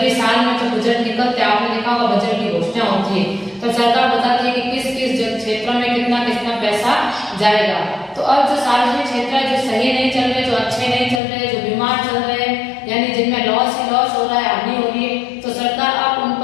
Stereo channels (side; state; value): right; drops out; at 11.2 s